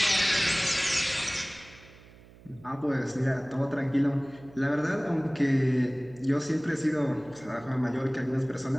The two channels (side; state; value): right; noise; hum, 23 dB below the sound